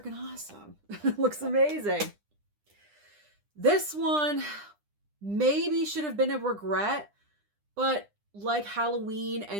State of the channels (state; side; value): late; left; 9.9 ms